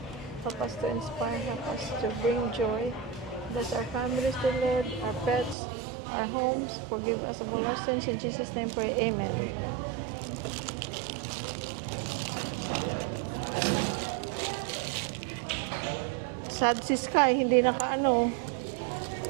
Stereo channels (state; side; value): drops out; left; at 5.6 s